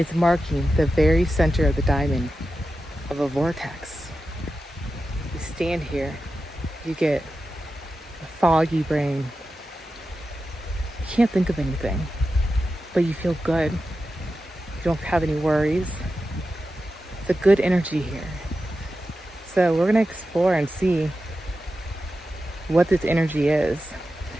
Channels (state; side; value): normal; both; correlation 0.91